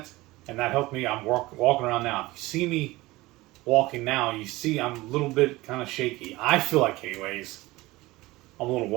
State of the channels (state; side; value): quieter; left; 19.9 dB